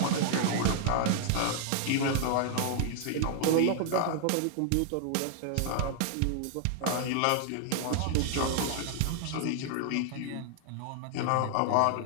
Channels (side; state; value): both; different; correlation -0.01